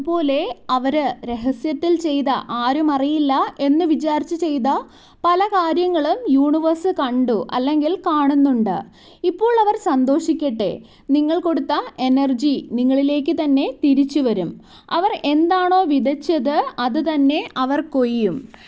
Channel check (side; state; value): both; identical; correlation 1.00